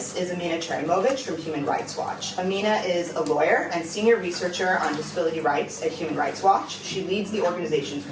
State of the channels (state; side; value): identical; both; correlation 1.00